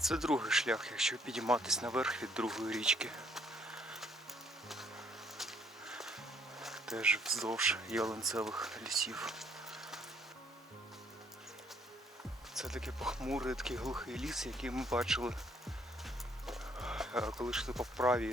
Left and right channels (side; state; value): both; normal; correlation 0.65